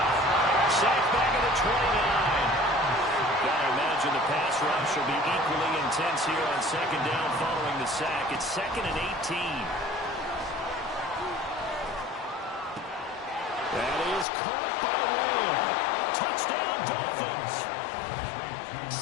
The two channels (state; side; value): drops out; right; at 14.2 s